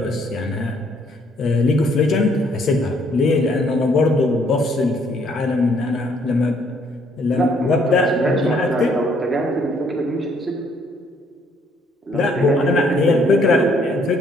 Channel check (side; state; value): both; normal; correlation 0.66